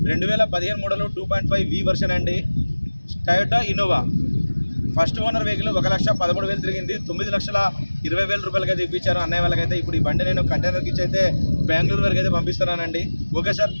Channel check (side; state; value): both; inverted; correlation -1.00